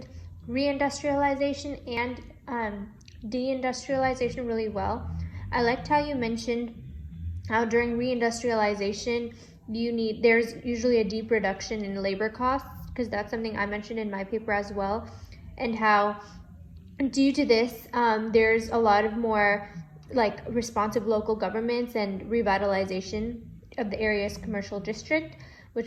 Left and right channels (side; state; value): both; identical; correlation 1.00